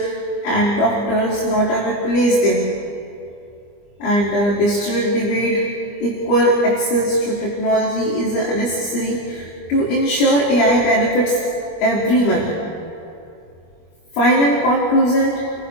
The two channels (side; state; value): right; late; 25 ms